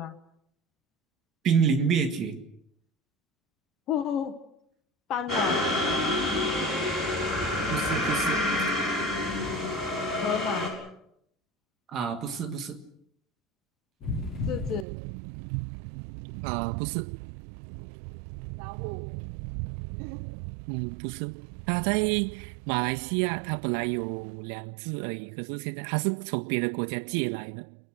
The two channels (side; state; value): left; drops out; at 14.9 s